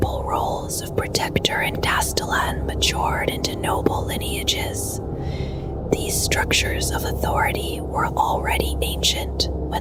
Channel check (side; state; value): both; identical; correlation 1.00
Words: roles of protector and castellan matured into noble lineages. These structures of authority were already ancient